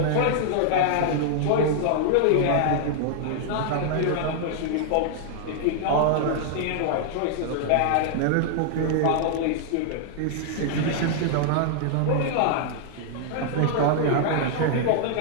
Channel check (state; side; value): different; both; correlation -0.01